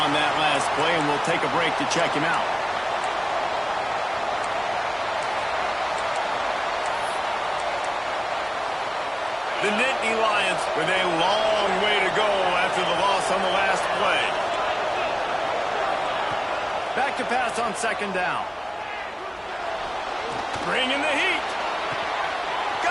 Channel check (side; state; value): both; identical; correlation 1.00